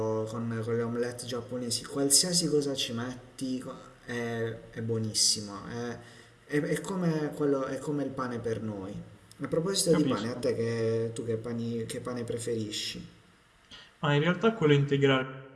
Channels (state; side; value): identical; both; correlation 1.00